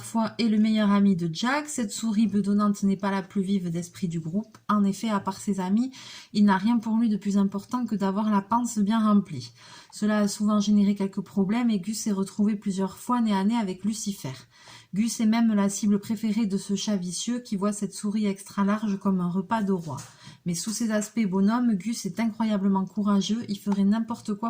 est le meilleur ami de Jack. Cette souris bedonnante n'est pas la plus vive d'esprit du groupe. En effet, à part ses amis, il n'a rien pour lui de plus important que d'avoir la panse bien remplie. Cela a souvent généré quelques problèmes et Gus s'est retrouvé plusieurs fois nez à nez avec Lucifer. Gus est même la cible préférée de ce chat vicieux qui voit cette souris extra large comme un repas de roi. Mais sous ses aspects bonhomme, Gus est incroyablement courageux, il ferait n'importe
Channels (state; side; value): identical; both; correlation 1.00